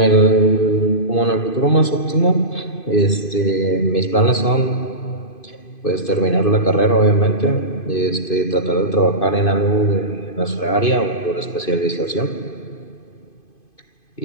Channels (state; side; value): late; right; 2.5 ms